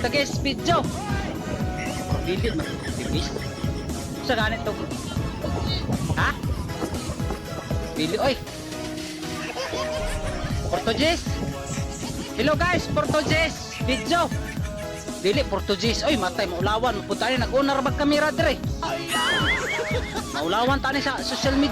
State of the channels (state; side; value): identical; both; correlation 1.00